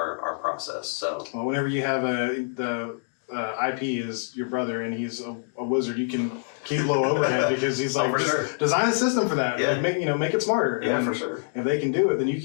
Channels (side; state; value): right; silent; digital silence